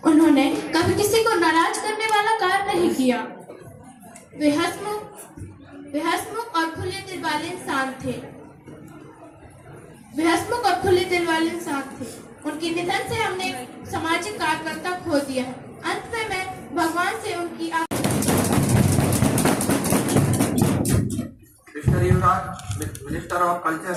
उन्होंने कभी किसी को नाराज करने वाला कार्य नहीं किया। वे हंसमुख और खुले दिल वाले इंसान थे। उनके निधन से हमने सामाजिक कार्यकर्ता खो दिया है। अंत में मैं भगवान से उनकी मिनिस्टर ऑफ कल्चर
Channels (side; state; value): both; identical; correlation 1.00